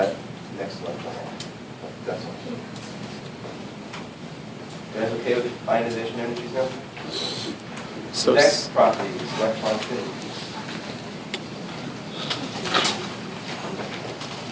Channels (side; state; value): both; identical; correlation 1.00